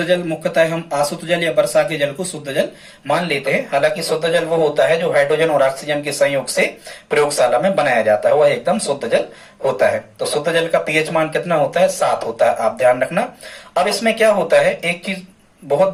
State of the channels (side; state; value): both; identical; correlation 1.00